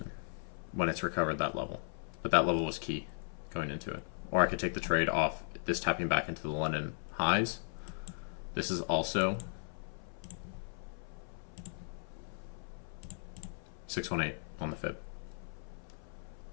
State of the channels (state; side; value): silent; right; 53 dB below the other